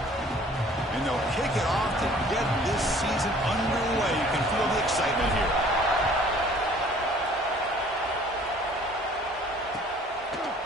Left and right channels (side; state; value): both; normal; correlation 0.53